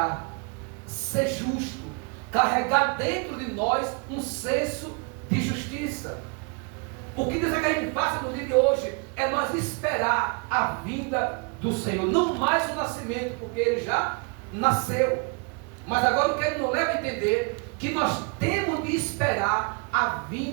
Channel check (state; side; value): quieter; left; 33.9 dB